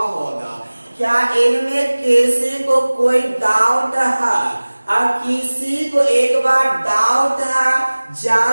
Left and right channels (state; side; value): inverted; both; correlation -1.00